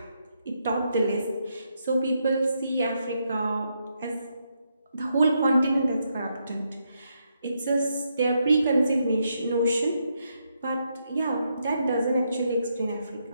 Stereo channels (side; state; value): both; inverted; correlation -0.79